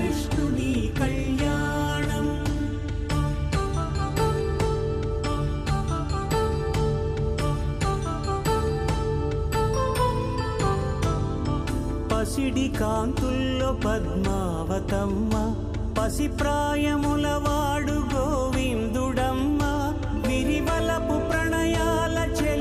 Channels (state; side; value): identical; both; correlation 1.00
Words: కళ్యాణం పసిడి కాంతుల్లో పద్మావతమ్మ పసిప్రాయముల వాడు గోవిందుడమ్మ విరివలపు ప్రణయాల